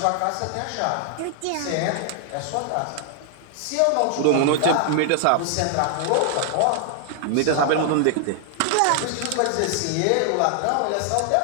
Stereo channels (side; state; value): both; different; correlation 0.00